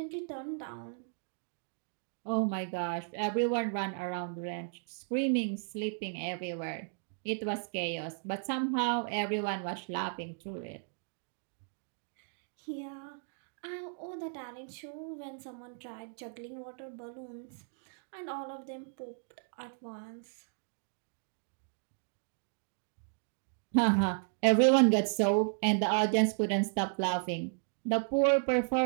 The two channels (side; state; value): left; silent; digital silence